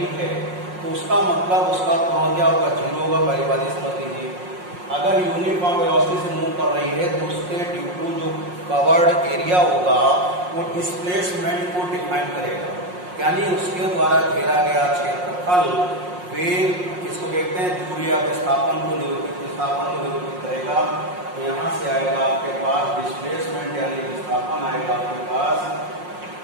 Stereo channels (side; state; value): left; late; 5.6 ms